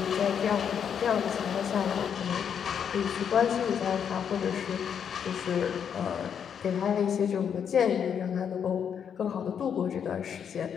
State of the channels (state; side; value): quieter; right; 7.8 dB